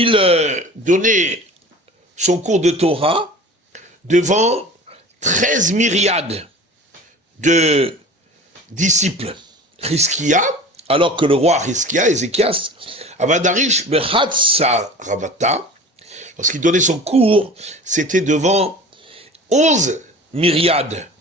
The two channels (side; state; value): both; normal; correlation 0.39